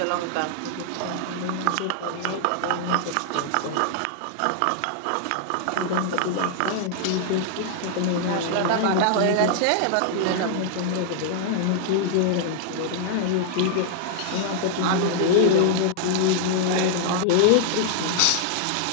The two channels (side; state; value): both; different; correlation 0.00